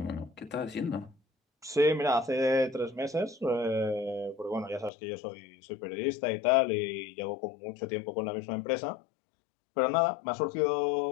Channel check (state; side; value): drops out; right; at 4.9 s